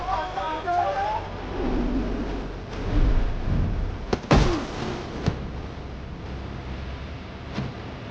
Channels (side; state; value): both; identical; correlation 1.00